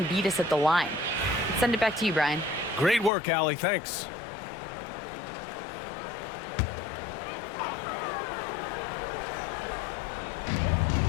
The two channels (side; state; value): right; drops out; at 3.1 s